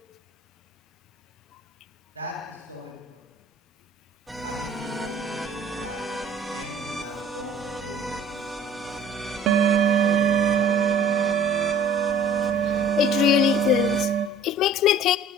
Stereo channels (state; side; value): normal; both; correlation 0.50